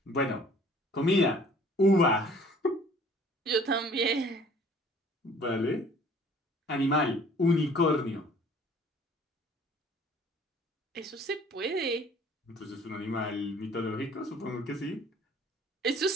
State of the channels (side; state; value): both; normal; correlation 0.53